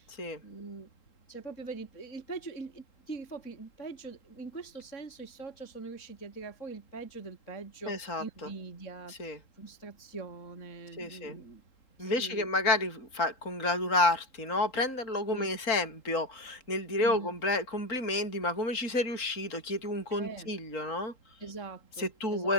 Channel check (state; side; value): late; right; 3.8 ms